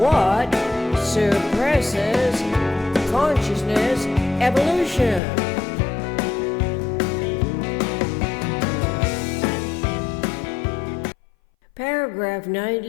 suppresses consciousness evolution? Paragraph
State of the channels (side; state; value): right; drops out; at 5.2 s